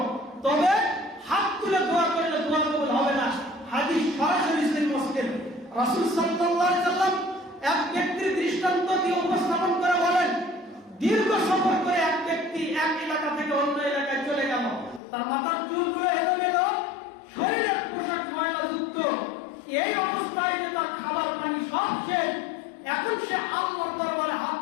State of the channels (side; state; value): right; drops out; at 15.0 s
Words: তবে হাত তুলে দোয়া করলে দোয়া কবুল হবে না। হাদিস সরাসরি সহিহ মুসলিম। রাসূল সাল্লাল্লাহু আলাইহি ওয়াসাল্লাম এক ব্যক্তির দৃষ্টান্ত দিয়ে উপস্থাপন করে বলেন, দীর্ঘ সফর করে এক ব্যক্তি এক এলাকা থেকে অন্য এলাকায় চলে গেল। তার মাথার চুলগুলো এলোমেলো, শরীরের পোশাক ময়লাযুক্ত, এই অবস্থায় যে তার খাবার পানি সব শেষ। এখন সে আল্লাহর দরবারে হাত